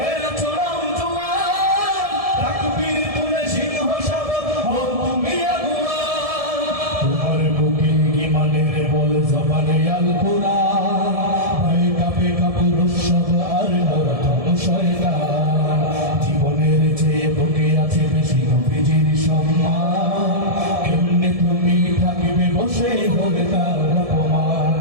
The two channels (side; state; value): left; late; 1.7 ms